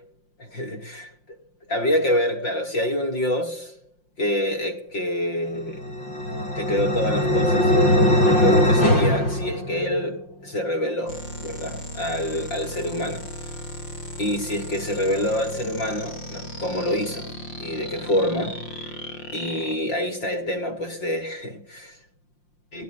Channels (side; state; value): right; late; 5.7 ms